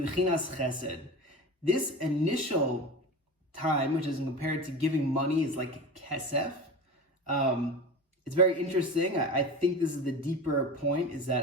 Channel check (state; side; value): normal; both; correlation 0.30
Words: chesed. This initial time, which is compared to giving money, is like kesef. It's very interesting. I think this is the deeper point, is